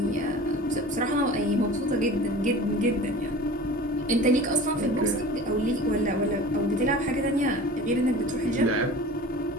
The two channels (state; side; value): normal; both; correlation 0.39